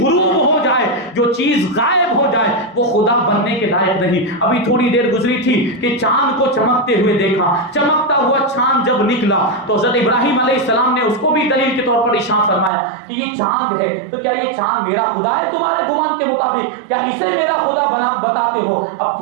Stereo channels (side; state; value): left; drops out; at 12.7 s